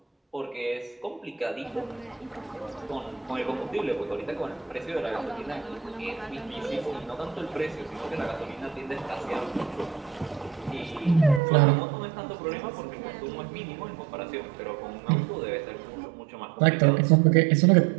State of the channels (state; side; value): drops out; left; at 11.4 s